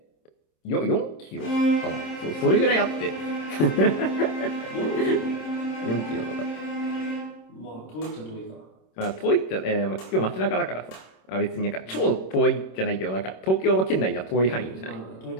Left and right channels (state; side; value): late; right; 26 ms